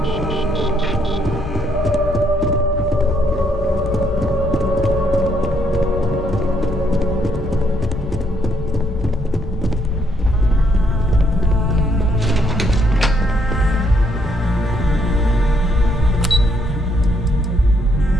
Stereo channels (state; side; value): normal; both; correlation 0.72